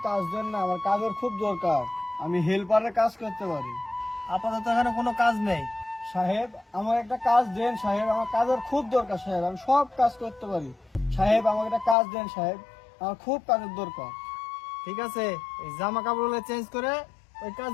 কাজ দেন না, আমার কাজের খুব দরকার, আমি হেল্পারের কাজ করতে পারি। আপাতত এখানে কোনো কাজ নেই। সাহেব, আমার একটা কাজ দেন সাহেব, আমার কাজের খুব দরকার সাহেব, আমি সব কাজ করতে পারি। সাহেব, আমাকে একটা কাজ দেন সাহেব, আমার খুব কাজের দরকার। ঠিক আছে, এই জামা কাপড়গুলো চেঞ্জ করে ওই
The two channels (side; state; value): right; drops out; at 12.0 s